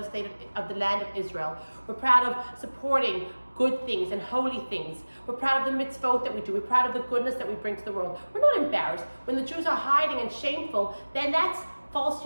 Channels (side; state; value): both; inverted; correlation -1.00